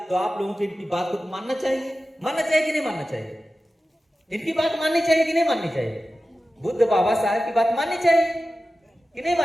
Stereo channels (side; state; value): both; normal; correlation 0.94